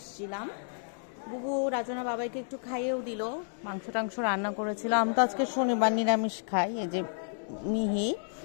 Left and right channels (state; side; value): silent; right; digital silence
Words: বুবু রাজনা বাবাইকে একটু খাইয়েও দিল, মাংস টাংস রান্না করেছিল। আমি তো আজকে শনিবার নিরামিষ খাই। এই যে মিহি,